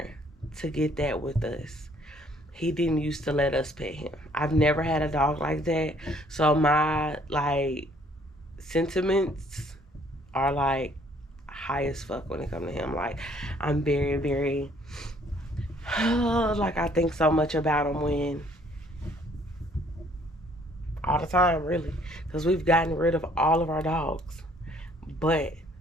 to get that with us. He didn't used to let us pet him. I've never had a dog like that. So my, like, sentiments are, like, high as fuck when it comes to him. Like, I'm very, very, like, I think so much about him when, all the time, really. Because we've gotten rid of all of our dogs. But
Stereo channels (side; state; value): both; normal; correlation 0.62